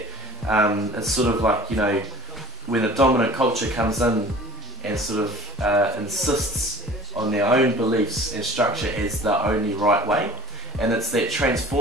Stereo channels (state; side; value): normal; both; correlation 0.46